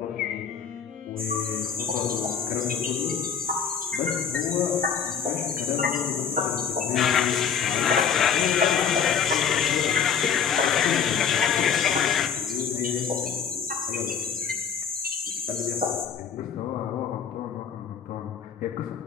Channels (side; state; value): right; quieter; 7.2 dB